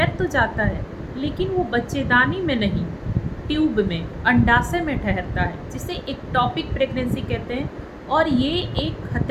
तो जाता है लेकिन वो बच्चेदानी में नहीं, ट्यूब में, अंडाशय में ठहरता है, जिसे एक्टोपिक प्रेगनेंसी कहते हैं। और ये एक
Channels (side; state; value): both; identical; correlation 1.00